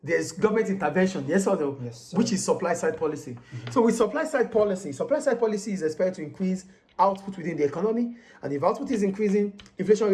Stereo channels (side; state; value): both; identical; correlation 1.00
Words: there's government intervention, yes or no? Yes, which is supply-side policy. So with supply-side policy is expected to increase output within the economy, and if output is increasing, inflation